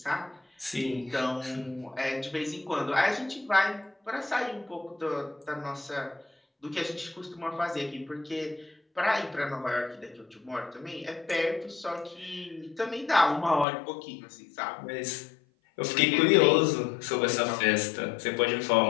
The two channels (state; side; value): drops out; right; at 13.7 s